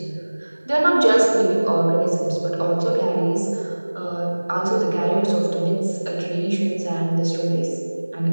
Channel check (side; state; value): both; inverted; correlation -1.00